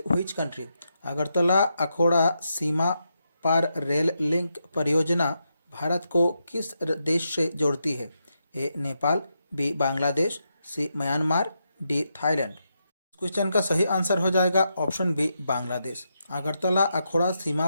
which country? Agartala Akhaura सीमा पार रेल लिंक परियोजना भारत को किस देश से जोड़ती है? A Nepal, B Bangladesh, C Myanmar, D Thailand. Question का सही आंसर हो जाएगा ऑप्शन बी बांग्लादेश। अगरतला अखौरा सीमा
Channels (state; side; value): inverted; both; correlation -0.84